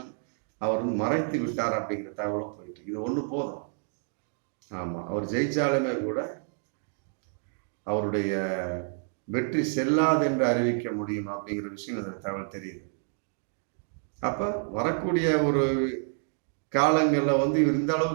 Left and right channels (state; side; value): silent; left; 59 dB below the other